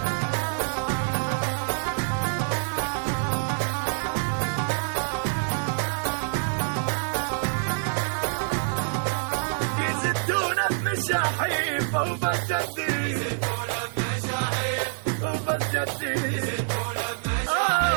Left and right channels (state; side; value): silent; left; digital silence